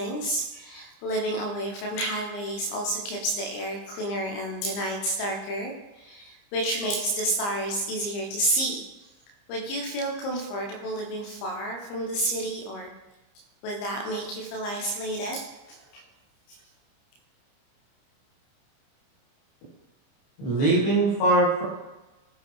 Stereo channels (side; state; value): right; late; 30 ms